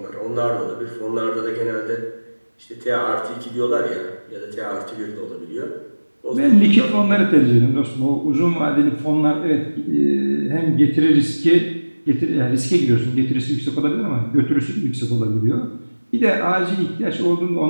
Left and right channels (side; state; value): both; inverted; correlation -1.00